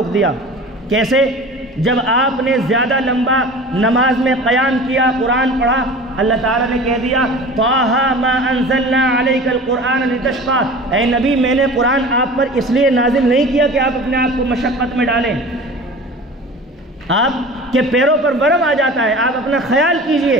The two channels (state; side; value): normal; both; correlation 0.39